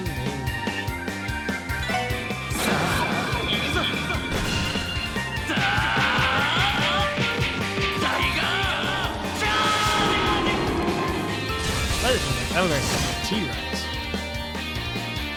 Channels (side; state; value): both; identical; correlation 1.00